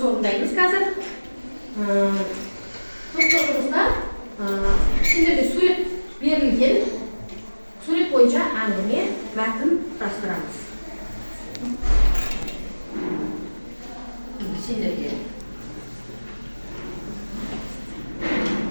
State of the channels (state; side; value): inverted; both; correlation -1.00